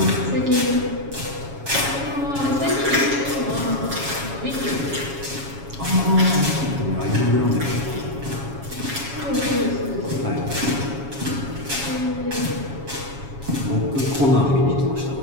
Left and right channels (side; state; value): left; late; 7.2 ms